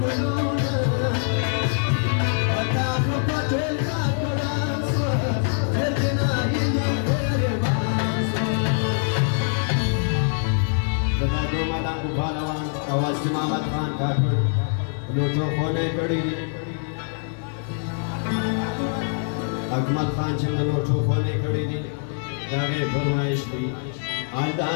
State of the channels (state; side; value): silent; right; digital silence